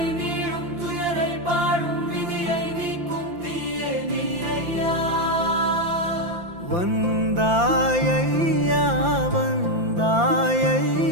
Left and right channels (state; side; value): late; left; 5.8 ms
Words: நீளும் துயரை பாடும் விதியை நீக்கும் தீயே நீ ஐயா வந்தாய் ஐயா